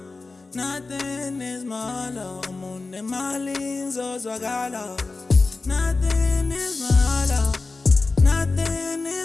Nothing is my love. I'm on the Marlins, so I got love. Nothing is my love. Nothing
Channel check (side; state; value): right; quieter; 3.8 dB